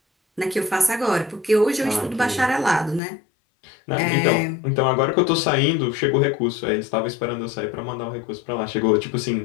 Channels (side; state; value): right; drops out; at 3.0 s